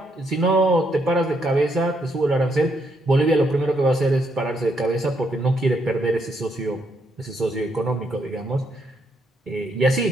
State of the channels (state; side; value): normal; both; correlation 0.75